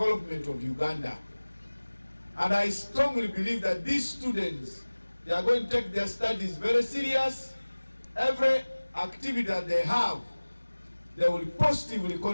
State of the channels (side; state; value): both; inverted; correlation -1.00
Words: of Uganda. And I strongly believe that these students, they are going to take their studies very serious. Every activity that they have, they will positively